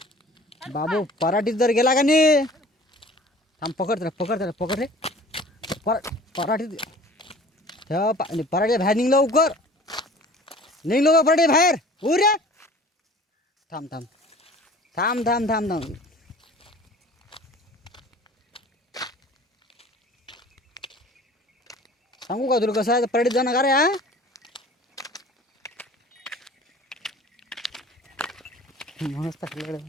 बाबू पराठीत जर गेला का नाही, थांब पकड रे. पराठीत पराठी बाहेर निघ लवकर, निघ लवकर पराठी बाहेर. रे थांब थांब थांब थांब थांब थांब. सांगू का तुला कसं आहे पराठीत जाणं का रे? हा मस्त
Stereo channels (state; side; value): normal; both; correlation 0.46